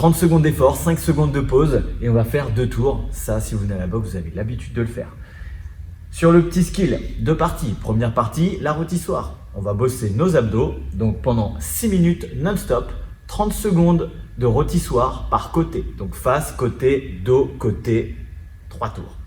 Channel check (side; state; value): both; identical; correlation 1.00